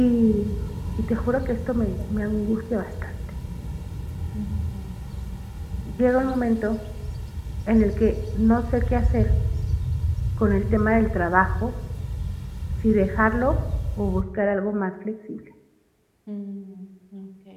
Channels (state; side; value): identical; both; correlation 1.00